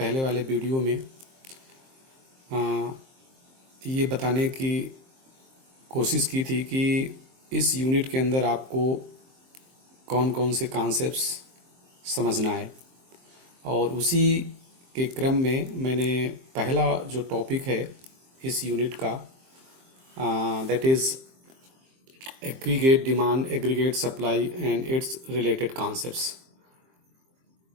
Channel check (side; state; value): left; late; 23 ms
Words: पहले वाले वीडियो में ये बताने की कोशिश की थी कि इस यूनिट के अंदर आपको कौन कौन से कॉन्सेप्ट्स समझना है। और उसी के क्रम में मैंने पहला जो टॉपिक है इस यूनिट का, that is aggregate demand, aggregate supply and its related concepts,